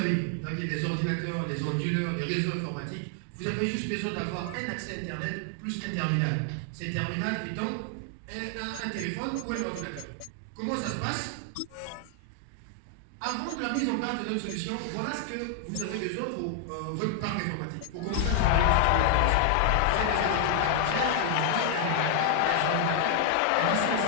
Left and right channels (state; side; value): different; both; correlation 0.00